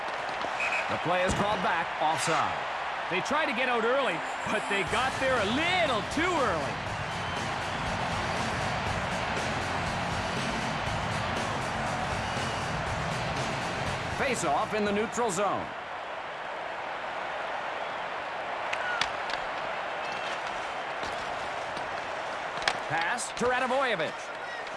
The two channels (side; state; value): both; identical; correlation 1.00